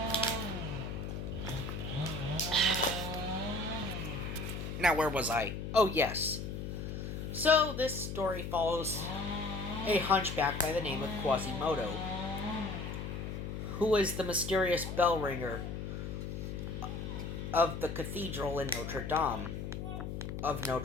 Now, where was I? Oh, yes. So, this story follows a hunchback by the name of Quasimodo, who is the mysterious bell ringer of the cathedral in Notre Dame.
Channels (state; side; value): noise; left; hum, 5 dB below the sound